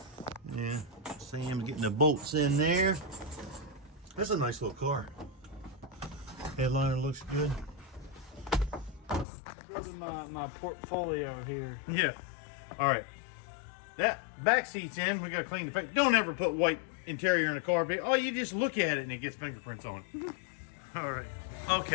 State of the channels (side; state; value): right; drops out; at 9.2 s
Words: Yeah, Sam's getting the bolts in there. That's a nice little car. Headliner looks good. Building my portfolio here. Yeah. All right. That back seat's in. We got to clean the face. Don't ever put white interior in the car. But, oh, you just look at it and it gets fingerprints on it. All right.